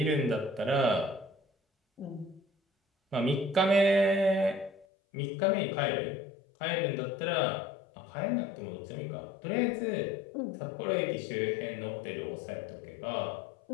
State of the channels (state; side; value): drops out; right; at 4.9 s